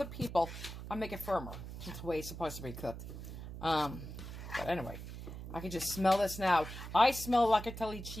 people, I make it firmer. That's the way it's supposed to be cooked. But anyway, I can just smell this now. I smell locatelli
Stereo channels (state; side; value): noise; right; hum, 10 dB below the sound